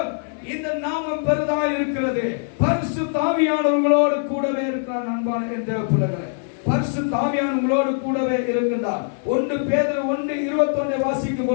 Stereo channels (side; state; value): right; silent; 62 dB below the other